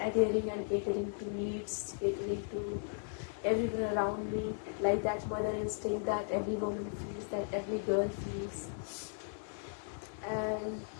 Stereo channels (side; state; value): right; silent; digital silence